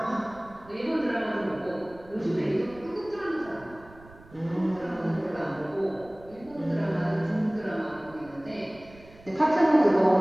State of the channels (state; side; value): noise; right; rumble, 22 dB below the sound